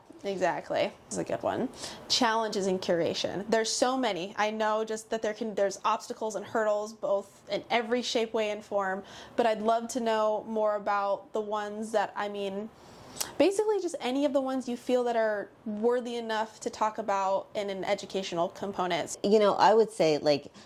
Exactly. This is a good one. Challenges in curation. There's so many. I know just that there's obstacles and hurdles, both in every shape, way, and form, but I'd love to know more about the ones that, I mean, basically just any of the ones you feel that are worthy enough to talk about in an educational component. You know, I would say like,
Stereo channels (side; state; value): both; identical; correlation 1.00